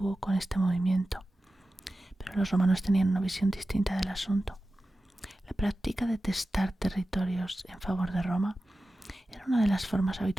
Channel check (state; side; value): normal; both; correlation 0.94